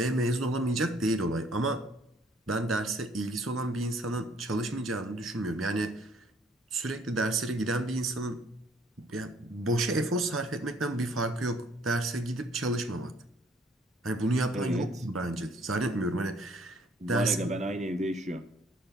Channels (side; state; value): both; normal; correlation 0.61